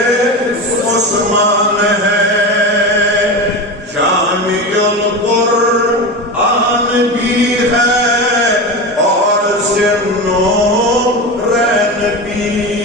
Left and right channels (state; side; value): normal; both; correlation 0.23